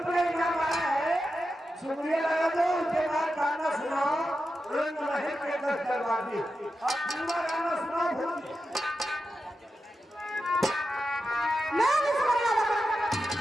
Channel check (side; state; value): both; normal; correlation 0.90